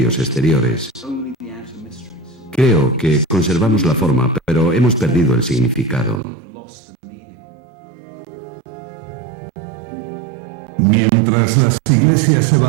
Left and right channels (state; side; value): drops out; left; at 6.2 s